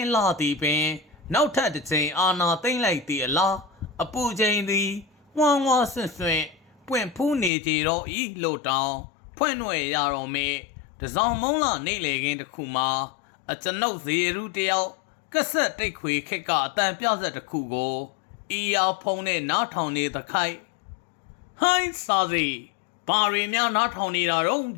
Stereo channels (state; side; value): drops out; right; at 7.5 s